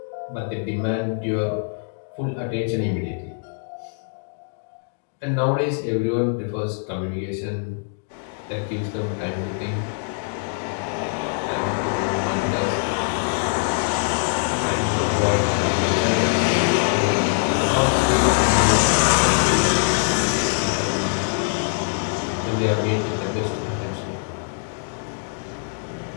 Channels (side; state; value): right; silent; digital silence